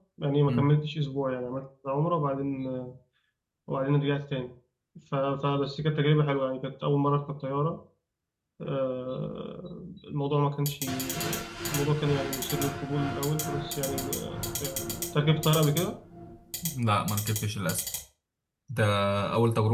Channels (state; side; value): identical; both; correlation 1.00